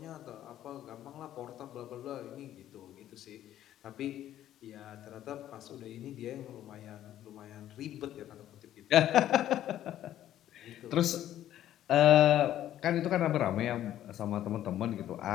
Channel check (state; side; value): quieter; right; 12.2 dB